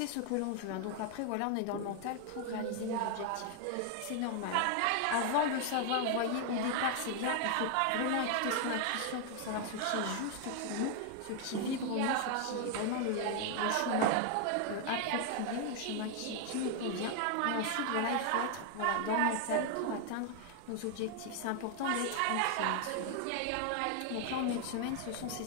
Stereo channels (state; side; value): different; both; correlation 0.00